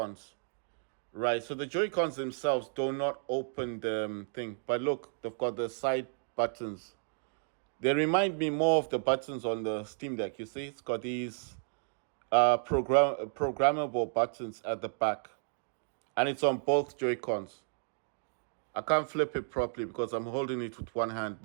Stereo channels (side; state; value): left; silent; digital silence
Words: Right. So the Joy-Cons themselves do not open the thing, but look, they've got the side buttons. They remind me more of the buttons on the Steam Deck. You see, it's got these programmable buttons at the back, and it's on both Joy-Cons. I can't flip it properly because I'm holding it with one hand,